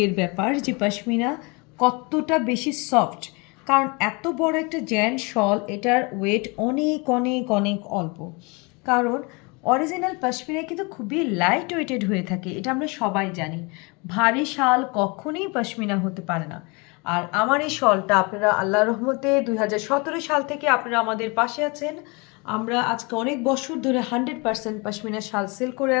ব্যাপার যে পশমিনা কতটা বেশি সফট, কারণ এত বড় একটা জ্যান শল, এটার ওয়েট অনেক অনেক অনেক অল্প। কারণ অরিজিনাল পশমিনা কিন্তু খুবই লাইট ওয়েটেড হয়ে থাকে, এটা আমরা সবাই জানি। ভারী শাল কখনোই পশমিনা হতে পারে না। আর আমার এই শলটা আপনারা আল্লাহর রহমতে 2017 সাল থেকে আপনারা আমাদের পাশে আছেন। আমরা আজকে অনেক বছর ধরে 100% পশমিনা শাল সেল করে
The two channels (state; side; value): quieter; right; 29.0 dB